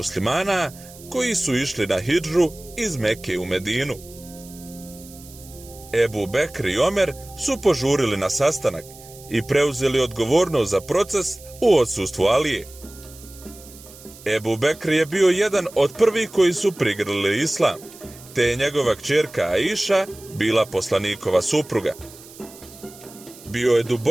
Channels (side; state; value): right; noise; hiss, 20 dB below the sound